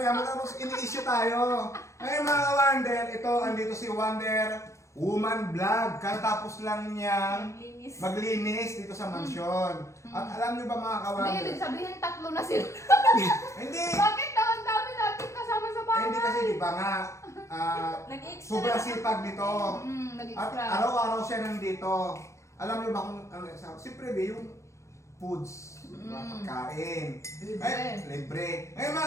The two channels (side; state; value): right; late; 0.14 ms